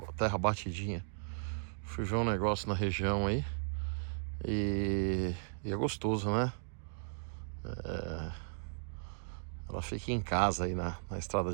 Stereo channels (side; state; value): left; silent; digital silence